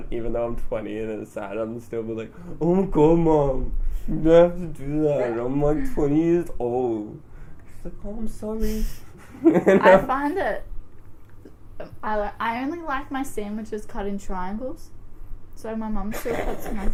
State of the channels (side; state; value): both; identical; correlation 1.00